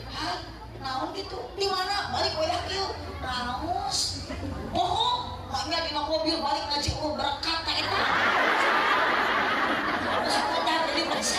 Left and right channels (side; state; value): both; identical; correlation 1.00